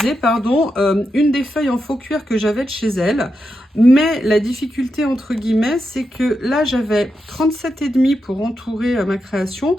pardon, une des feuilles en faux cuir que j'avais de chez elle. Mais la difficulté, entre guillemets, c'est que là, j'avais 37,5 pour entourer ma création.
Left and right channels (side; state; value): both; normal; correlation 0.86